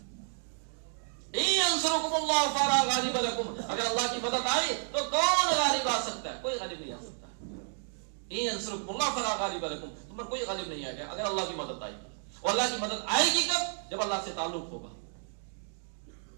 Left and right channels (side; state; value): left; silent; digital silence